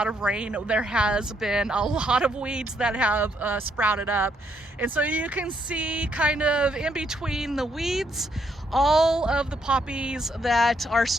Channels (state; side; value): normal; both; correlation 0.73